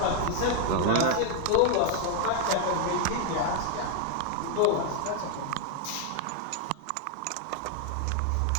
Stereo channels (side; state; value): both; different; correlation 0.00